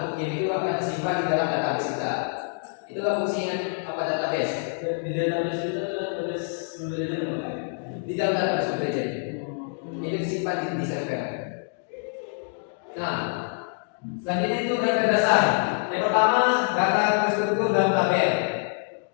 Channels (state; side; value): silent; right; digital silence